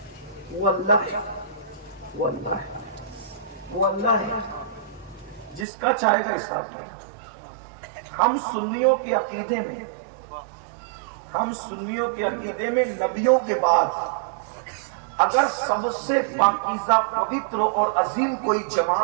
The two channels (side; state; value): left; drops out; at 5.7 s